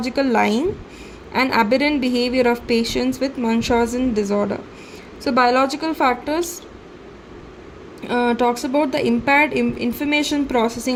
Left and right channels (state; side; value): identical; both; correlation 1.00